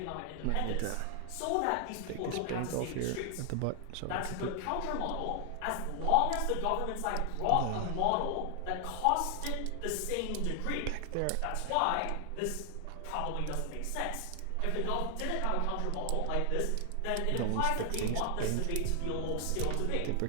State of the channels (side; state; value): both; different; correlation 0.00